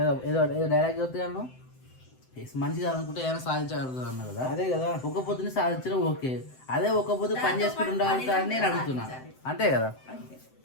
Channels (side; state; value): right; late; 7.8 ms